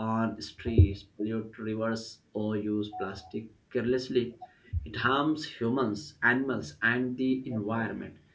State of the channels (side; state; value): both; identical; correlation 1.00